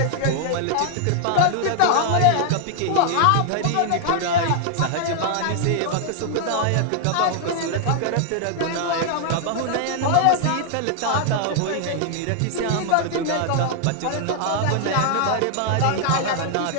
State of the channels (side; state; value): both; different; correlation 0.00